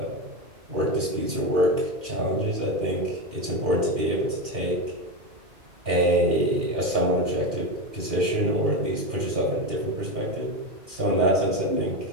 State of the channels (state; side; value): late; left; 2.4 ms